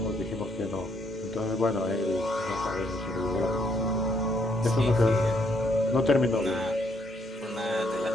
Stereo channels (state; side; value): normal; both; correlation 0.71